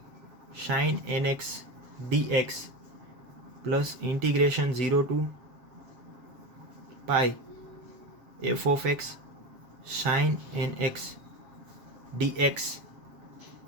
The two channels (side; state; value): left; late; 7.4 ms